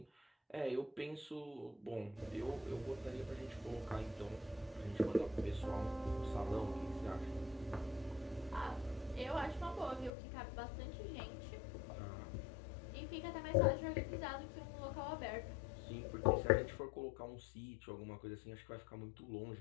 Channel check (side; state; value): right; drops out; at 10.1 s